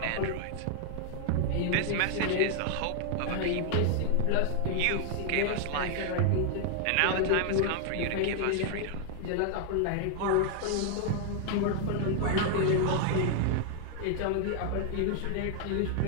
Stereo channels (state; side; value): different; both; correlation 0.00